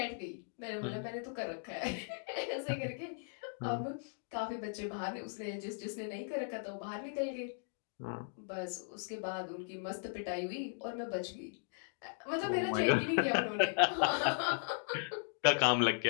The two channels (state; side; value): silent; right; digital silence